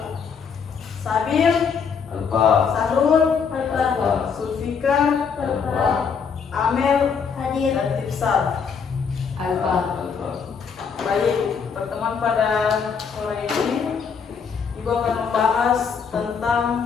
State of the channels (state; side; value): quieter; right; 6.2 dB